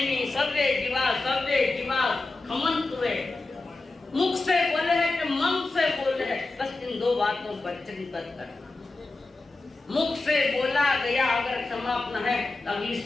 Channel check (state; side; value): quieter; right; 3.3 dB